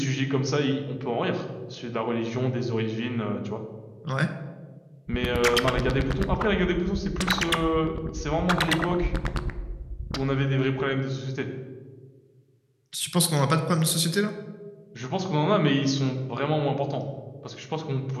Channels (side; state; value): both; identical; correlation 1.00